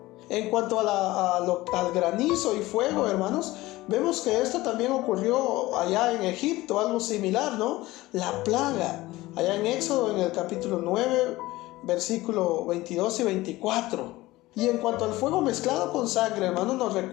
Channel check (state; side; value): quieter; right; 18.6 dB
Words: En cuanto al granizo y fuego, hermanos, vemos que esto también ocurrió allá en Egipto, algo similar, ¿no? La plaga, allá en Éxodo, en el capítulo 9, versículo 22 y 24. Y en cuanto al fuego mezclado con sangre, hermanos, nos